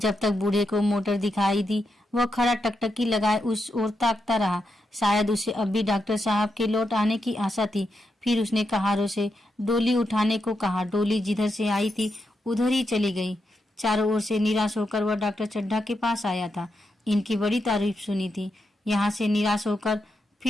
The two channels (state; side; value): normal; both; correlation 0.85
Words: तक बूढ़े को मोटर दिखाई दी, वह खड़ा टकटकी लगाए उस ओर ताकता रहा। शायद उसे अब भी डॉक्टर साहब के लौट आने की आशा थी। फिर उसने कहारों से डोली उठाने को कहा। डोली जिधर से आई थी उधर ही चली गई। चारों ओर से निराश होकर वह डॉक्टर चड्ढा के पास आया था। इनकी बड़ी तारीफ सुनी थी। यहाँ से निराश होकर